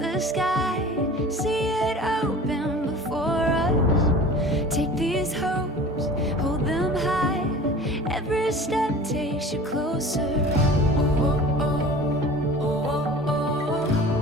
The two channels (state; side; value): normal; both; correlation 0.41